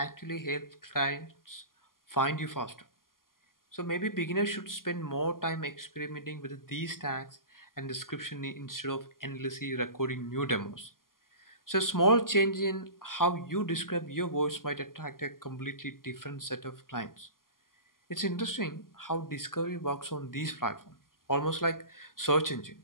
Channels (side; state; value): right; late; 0.91 ms